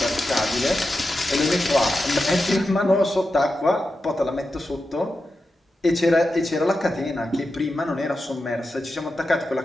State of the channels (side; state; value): both; normal; correlation 0.90